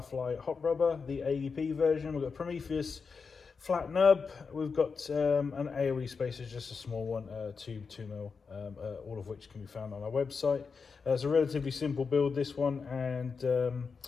hot rubber, the AEP version. We've got Prometheus Flat Nub. We've got an AOE Spacer, just a small one, 2mm, all of which can be found on our website. It's a relatively simple build, this one, and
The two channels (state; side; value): quieter; right; 5.2 dB